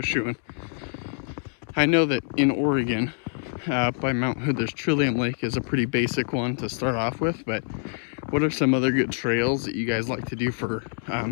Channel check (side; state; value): right; silent; digital silence